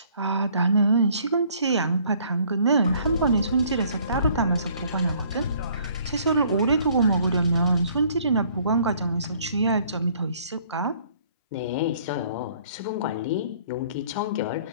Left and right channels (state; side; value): inverted; both; correlation -0.59